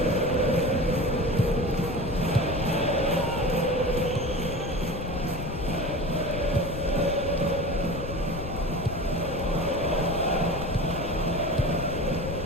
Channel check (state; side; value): noise; left; rumble, 8 dB below the sound